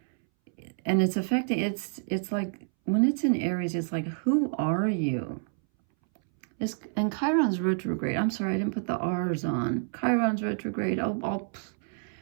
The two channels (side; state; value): left; silent; 59 dB below the other